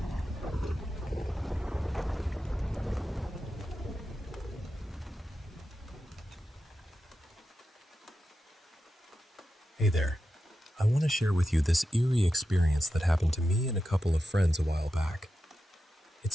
Hey there. I want to share with you this eerie experience that happened to me and a couple of friends a while back.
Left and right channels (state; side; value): normal; both; correlation 0.90